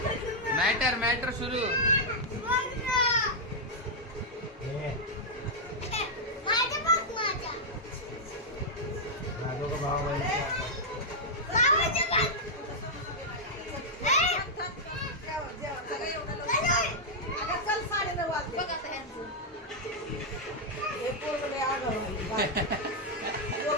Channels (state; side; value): normal; both; correlation -0.04